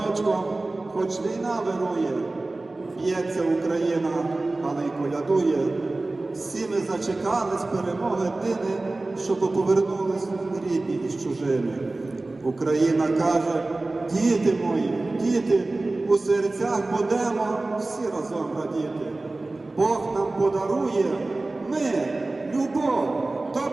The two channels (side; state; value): left; quieter; 3.1 dB